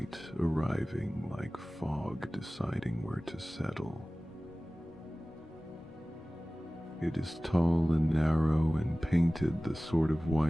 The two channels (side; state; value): both; normal; correlation 0.98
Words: arriving like fog deciding where to settle. It is tall and narrow and painted the sort of